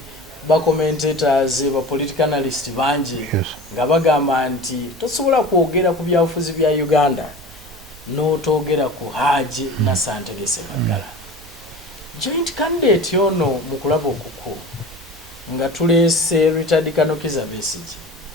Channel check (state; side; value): normal; both; correlation 0.36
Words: ba commentators ba political analyst banji nga bagamba nti tosobola kwogera ku byabufuzi bya Uganda n'otogera ku Haji Nasser Ntege Ssebaggala joint candidate ono mu kulaba okuku nga tuleese Richard Kanokiza Besigye